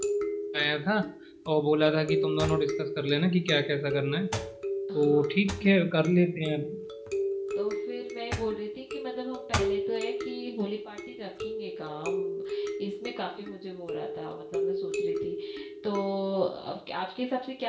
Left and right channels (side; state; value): both; identical; correlation 1.00